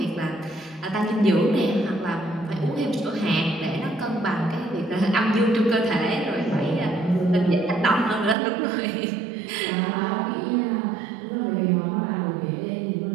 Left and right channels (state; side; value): drops out; left; at 8.3 s